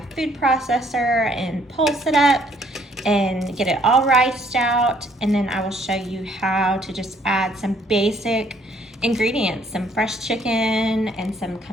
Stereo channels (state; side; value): normal; both; correlation 0.64